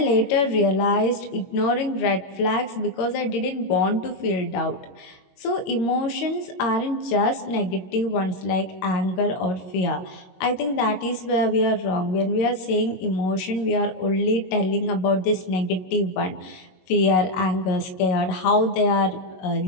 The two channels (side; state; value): right; late; 22 ms